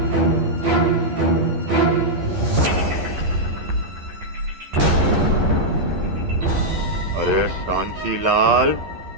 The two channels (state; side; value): late; left; 12 ms